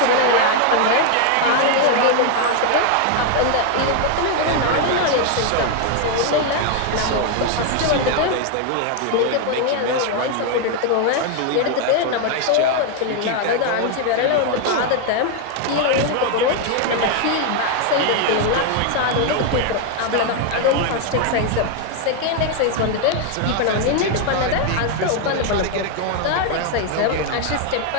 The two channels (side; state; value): both; different; correlation 0.01